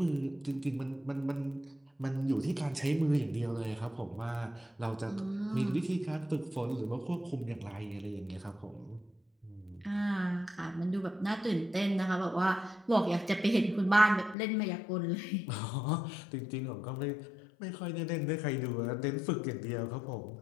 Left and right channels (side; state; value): right; drops out; at 14.4 s